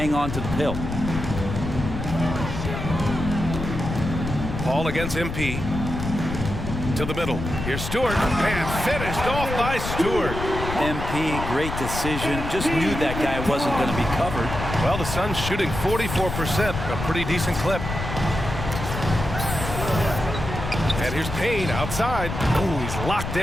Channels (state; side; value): noise; left; rumble, 5 dB below the sound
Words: on to the pill. Paul against MP. To the middle. Here's Stewart. And finished off by Stewart. MP, great decision. Just knew that guy wasn't going to be covered. Well, the Suns shooting 44%. A pretty decent clip. And here's Payne outside. Ooh, he's locked